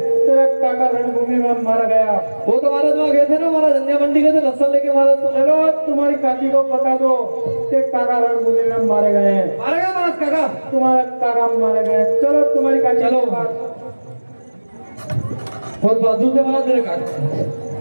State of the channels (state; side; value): inverted; both; correlation -1.00